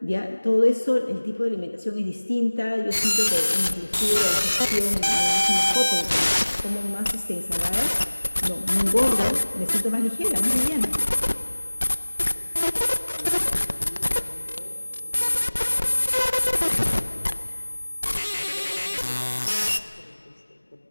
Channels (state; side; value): inverted; both; correlation -1.00